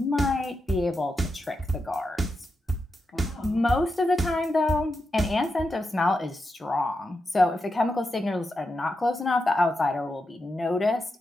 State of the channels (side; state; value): both; normal; correlation 0.87